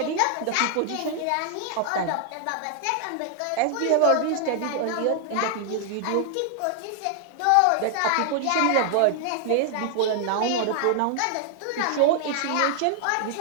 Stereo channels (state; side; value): different; both; correlation 0.00